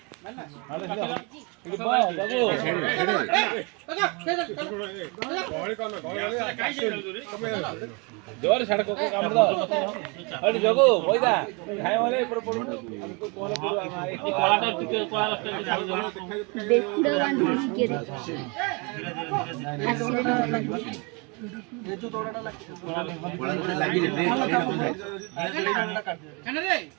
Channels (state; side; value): quieter; left; 31.0 dB